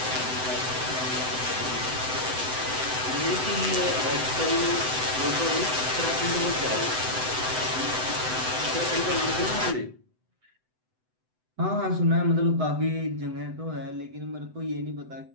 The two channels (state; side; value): late; left; 7.9 ms